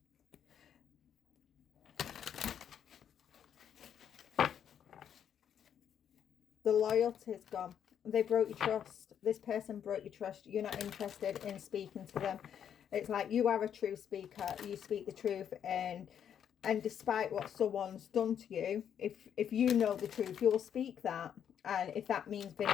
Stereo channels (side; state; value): right; quieter; 8.8 dB